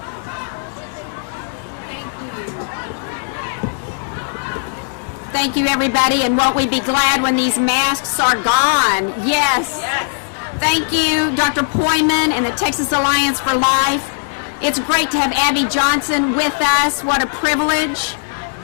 Thank you, everybody, and won't we be glad when these masks are gone? Yes. Thank you, Dr. Poyman and the Texas Alliance for Life. It's great to have Abby Johnson with us. What a privilege.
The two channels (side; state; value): right; silent; digital silence